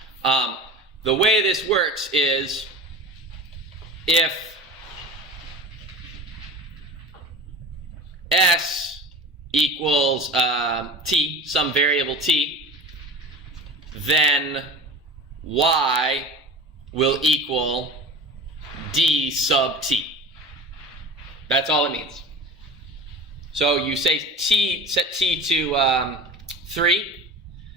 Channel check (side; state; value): both; normal; correlation 0.34